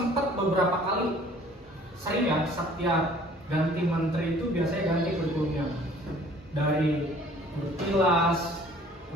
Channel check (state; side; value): normal; both; correlation 0.53